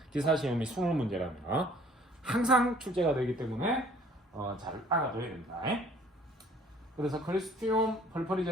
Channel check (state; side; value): normal; both; correlation 0.55